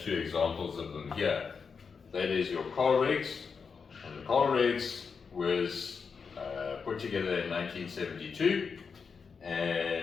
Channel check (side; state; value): right; quieter; 5.6 dB